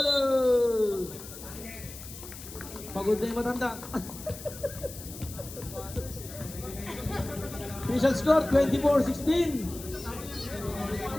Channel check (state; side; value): noise; left; hiss, 13 dB below the sound